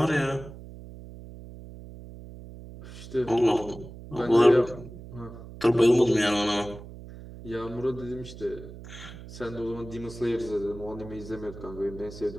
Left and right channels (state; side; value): noise; right; hum, 14 dB below the sound